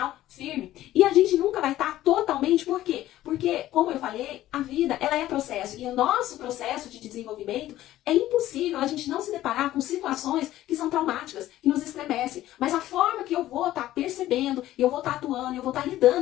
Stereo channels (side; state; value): right; quieter; 14.3 dB